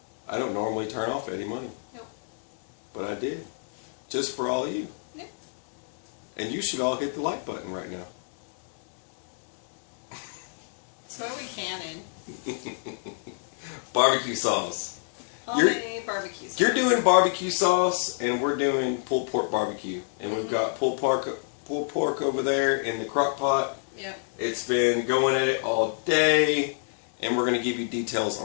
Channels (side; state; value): right; silent; digital silence